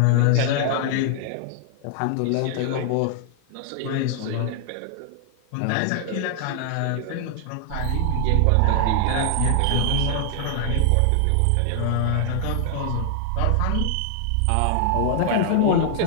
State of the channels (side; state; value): both; different; correlation 0.00